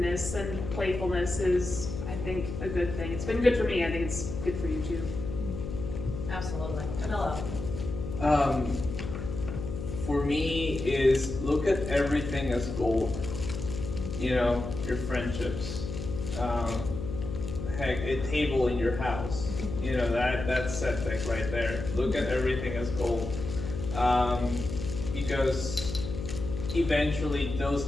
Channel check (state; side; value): noise; left; hum, 6 dB below the sound